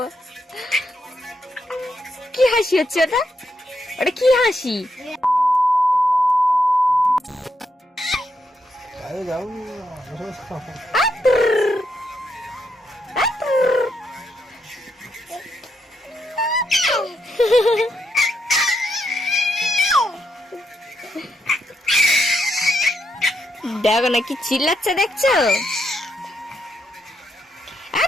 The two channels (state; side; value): normal; both; correlation 0.80